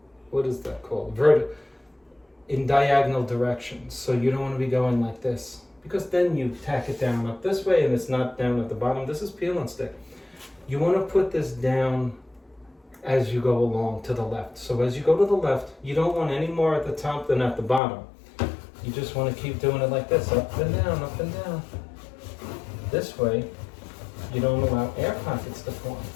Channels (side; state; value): right; drops out; at 17.8 s